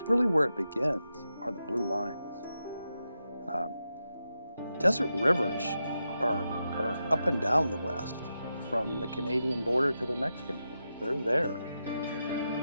really where it begins, are the blue lines. Desert rivers are up and down the West, from the Canadian border to the Mexican border. They're there.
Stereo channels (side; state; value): both; inverted; correlation -0.88